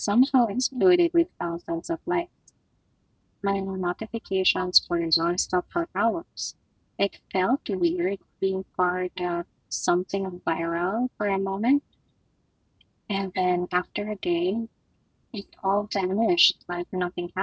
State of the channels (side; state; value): both; identical; correlation 1.00